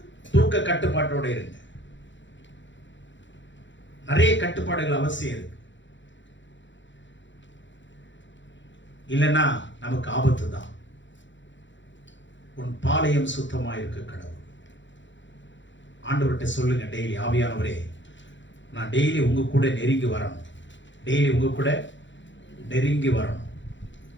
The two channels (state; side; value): late; right; 0.54 ms